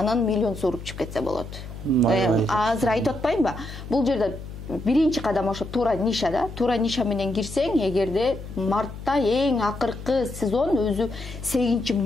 миллион сууруп чыгып кетсе болот. Азыр айтып атпаймынбы? Бул жерде биринчи кадам ошо туура ниша да. Туура ниша менен кирсең, эгерде мартта эң акыркы сезон өзү 8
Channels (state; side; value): noise; left; hum, 12 dB below the sound